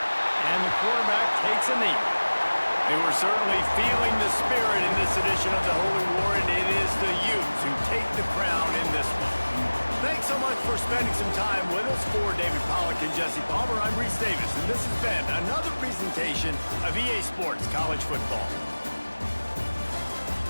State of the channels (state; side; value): inverted; both; correlation -1.00